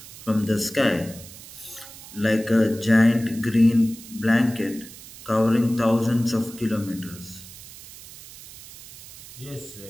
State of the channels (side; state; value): right; noise; hiss, 17 dB below the sound